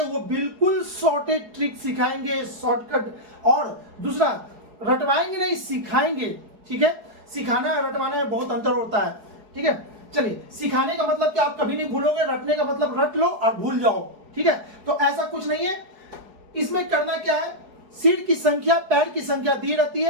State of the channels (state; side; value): late; left; 4.7 ms